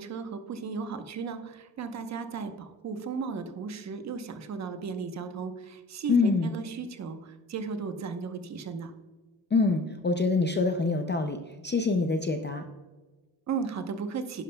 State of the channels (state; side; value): normal; both; correlation 0.45